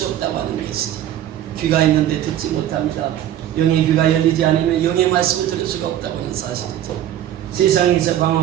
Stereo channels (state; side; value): quieter; left; 11.7 dB